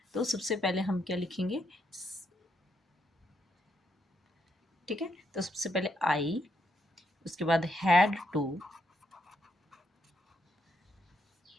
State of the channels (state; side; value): normal; both; correlation 0.77